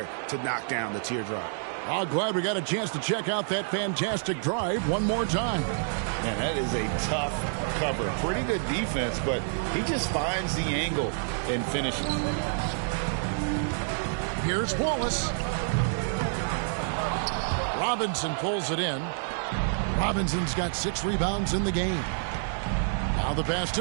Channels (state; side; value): silent; left; digital silence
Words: to knock down the teardrop. Oh, glad we got a chance to check out that fantastic drive one more time. Man, that is a tough cover. Pretty good defense, but he just finds the angle and finishes. Here's Wallace. Robinson pulls it in. Robinson's got 6 rebounds in the game. Now the pass